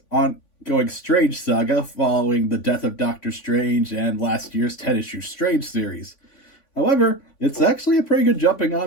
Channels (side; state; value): right; late; 3.5 ms